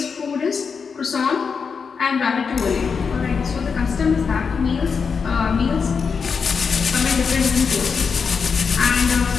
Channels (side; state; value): right; quieter; 5.7 dB